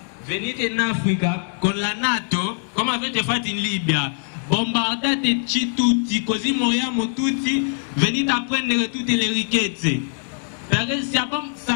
Venite in Africa con la NATO, come avete fatto in Libia. Bombardateci tutti, così moriamo tutti. Venite a prendere tutte le ricchezze. Perché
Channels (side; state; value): right; silent; digital silence